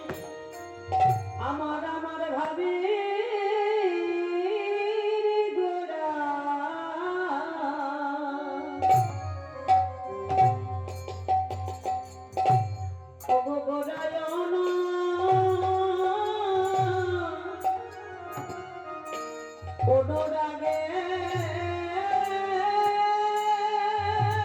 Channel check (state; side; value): identical; both; correlation 1.00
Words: আমার আমার ভাবে গোড়া। ওগো গোড়ায়ন অনুরাগে